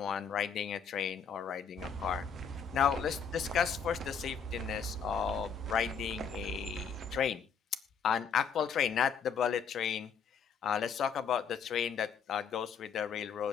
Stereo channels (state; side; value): quieter; right; 6.5 dB